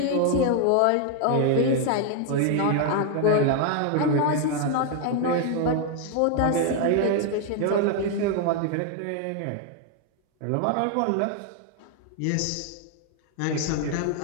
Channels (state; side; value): different; both; correlation 0.00